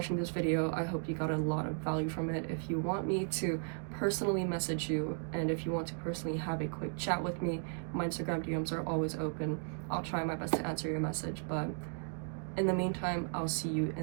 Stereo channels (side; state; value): left; silent; 54 dB below the other